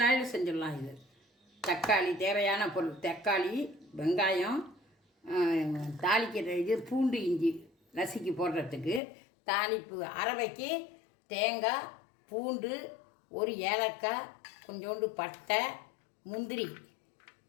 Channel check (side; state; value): right; drops out; at 9.0 s